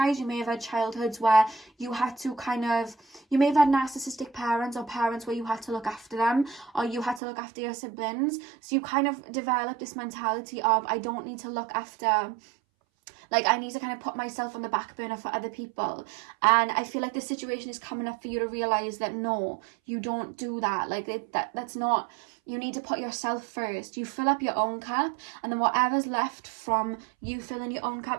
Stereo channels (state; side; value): drops out; left; at 7.2 s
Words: you may have had childhoods where you had to you may have had narcissistic parents, or parents where you had to look after them, or you had to look after your siblings. So you kind of develop this mentality of, I don't need to look after, like, I need to kind of put myself on the back burner for other people. And I feel like this situation is coming up for you to realize that no, you don't do that. Like, that's not, you need to put yourself first. You fill up your own cup, and then whatever's left from you filling your own